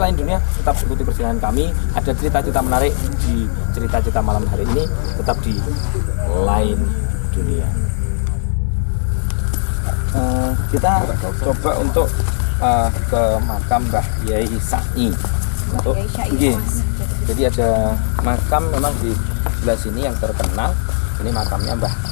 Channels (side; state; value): right; silent; digital silence